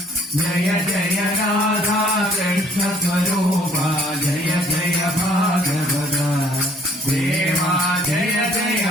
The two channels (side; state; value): both; normal; correlation 0.60